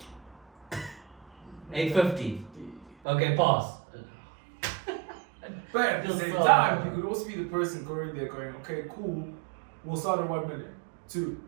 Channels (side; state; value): left; drops out; at 3.0 s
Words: 850. Okay, pass. But at the Just same so- time, you could also be the person going there going, okay, cool, we'll start at 1 million. 2,